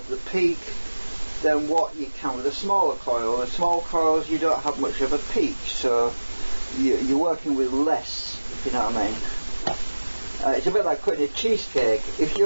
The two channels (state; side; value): inverted; both; correlation -1.00